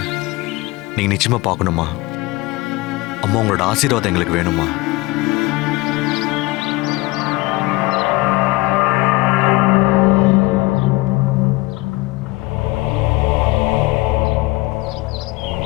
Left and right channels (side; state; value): right; quieter; 21.4 dB